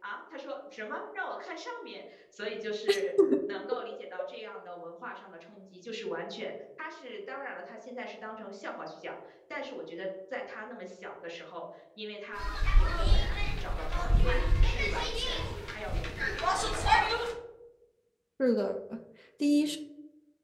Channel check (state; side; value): identical; both; correlation 1.00